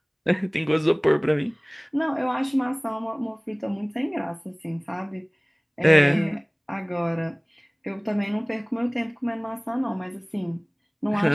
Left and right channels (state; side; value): identical; both; correlation 1.00